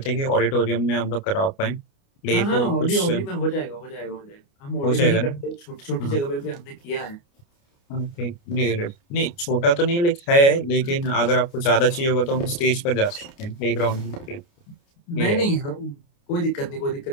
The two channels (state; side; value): late; right; 29 ms